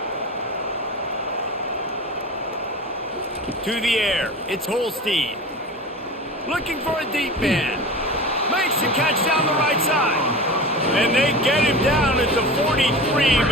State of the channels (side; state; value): both; normal; correlation 0.32